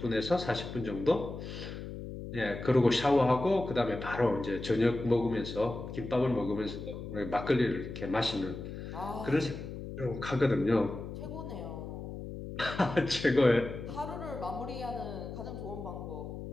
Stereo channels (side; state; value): left; noise; hum, 9 dB below the sound